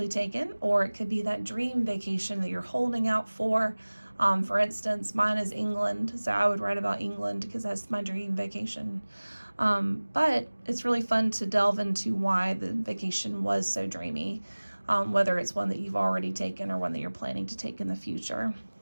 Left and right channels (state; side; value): inverted; both; correlation -1.00